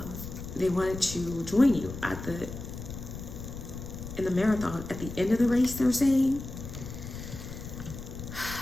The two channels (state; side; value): noise; left; rumble, 10 dB below the sound